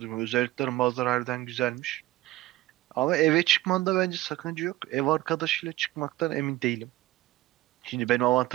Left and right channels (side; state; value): left; quieter; 16.9 dB